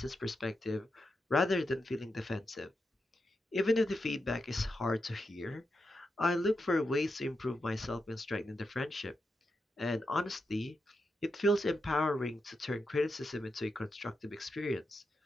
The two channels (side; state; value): both; normal; correlation 0.86